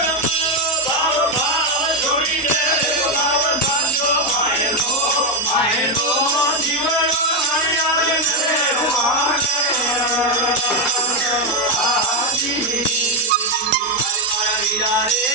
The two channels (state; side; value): normal; both; correlation 0.05